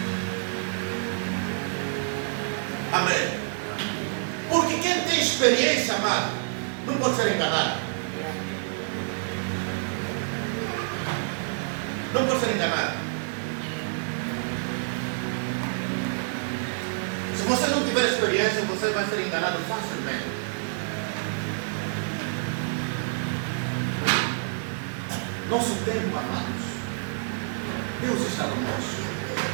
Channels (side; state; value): left; silent; 60 dB below the other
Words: Amém. Porque quem tem experiência, amado, não pode ser enganado. Não pode ser enganado. Se você não tiver experiência, você vai ser enganado facilmente. Nosso tempo, amados, Deus está conosco.